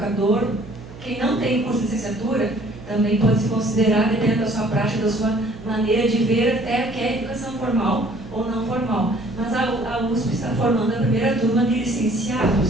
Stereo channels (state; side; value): noise; right; hum, 16 dB below the sound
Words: quem não tem curso de licenciatura, também pode se considerar, dependendo da sua prática, da sua maneira de ver até o que é educação formal ou não formal. Mas a USP está formando a primeira turma de